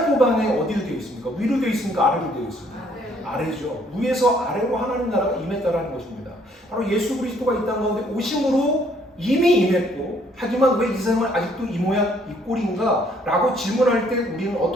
어디로 되어 있습니까? 위로 되어 있습니까? 아래로 되어 있습니까? 아래죠. 위에서 아래로 하나님 나라가 임했다라는 것입니다. 바로 예수 그리스도가 이 땅 가운데 오심으로 이미 임했고, 하지만 왜 이 세상은 아직도 이 모양 이 꼴인가? 라고 질문할 때 우리는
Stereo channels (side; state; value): both; normal; correlation 0.64